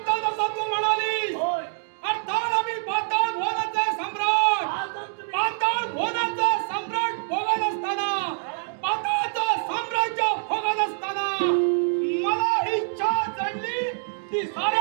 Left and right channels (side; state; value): left; silent; digital silence